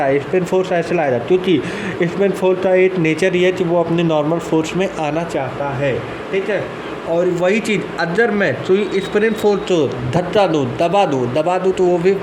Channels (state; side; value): identical; both; correlation 1.00